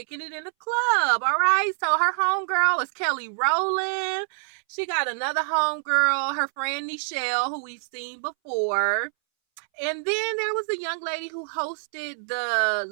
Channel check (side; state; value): left; silent; 61 dB below the other